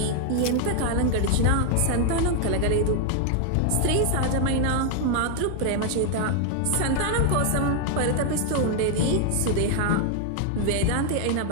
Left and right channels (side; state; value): both; different; correlation 0.00